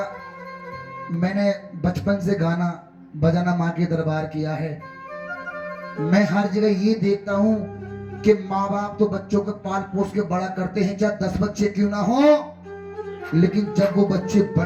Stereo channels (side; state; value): both; identical; correlation 1.00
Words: मैंने बचपन से गाना बजाना माँ के दरबार किया है। मैं हर जगह ये देखता हूँ कि माँ बाप तो बच्चों को पाल पोस के बड़ा करते हैं, चाहे 10 बच्चे क्यों ना हो, लेकिन जब वो बच्चे